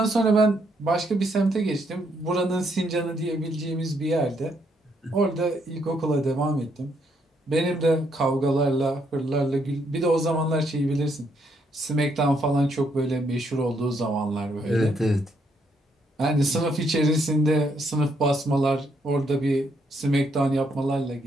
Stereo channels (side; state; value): both; normal; correlation 0.74